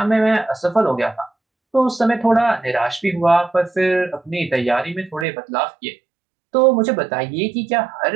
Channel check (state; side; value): drops out; left; at 5.2 s